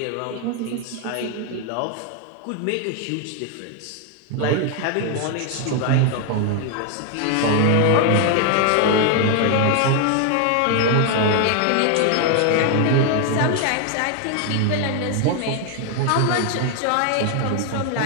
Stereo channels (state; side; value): different; both; correlation 0.00